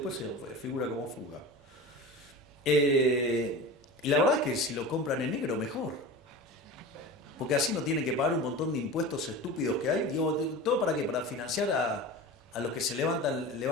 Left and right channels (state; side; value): normal; both; correlation 0.32